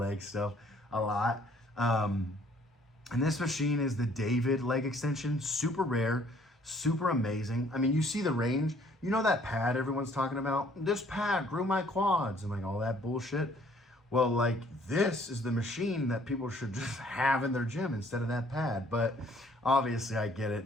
stuff a lot. And this machine is the David leg extension. Super rare, super amazing. I mean, you see the range. You know that pad everyone's talking about? This pad grew my quads and like all that bullshit. Well, like, this is the machine that people should just have in their gym instead of that pad. But obviously I get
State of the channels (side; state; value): both; normal; correlation 0.60